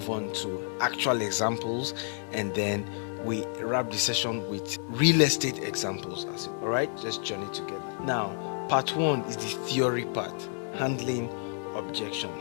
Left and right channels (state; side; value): silent; right; 58 dB below the other